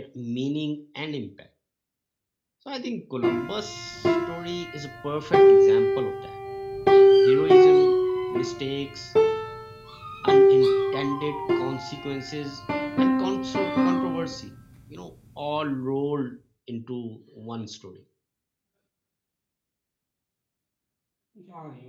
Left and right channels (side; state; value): both; identical; correlation 1.00